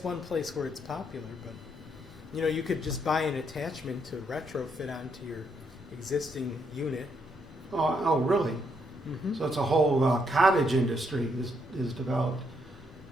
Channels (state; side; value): normal; both; correlation 0.75